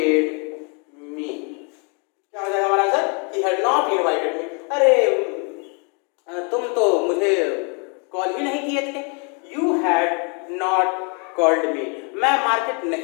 me. क्या हो जाएगा हमारा answer, he had not invited me. अरे तुम तो मुझे कॉल ही नहीं किए थे, you had not called me. मैं मार्केट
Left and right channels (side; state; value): right; quieter; 35.9 dB